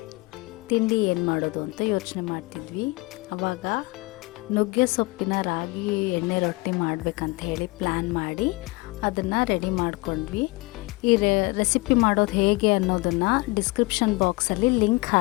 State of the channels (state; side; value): quieter; right; 24.5 dB